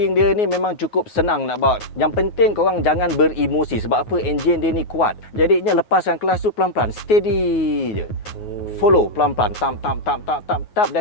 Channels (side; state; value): right; late; 9.4 ms